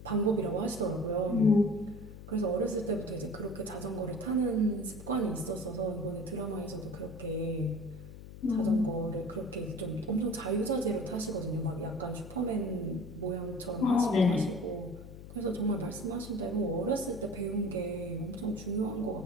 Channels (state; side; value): noise; left; hum, 14 dB below the sound